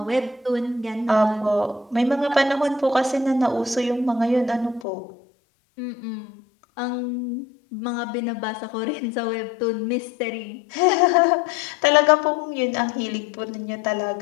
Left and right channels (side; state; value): right; drops out; at 4.9 s